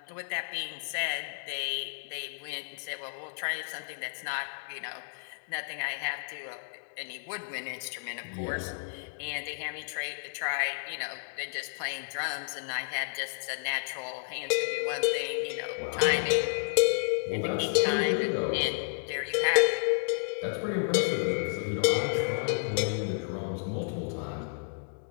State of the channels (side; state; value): right; silent; digital silence